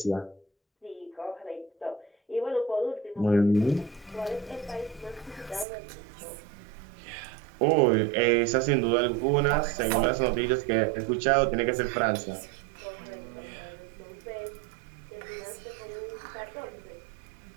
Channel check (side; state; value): left; drops out; at 5.7 s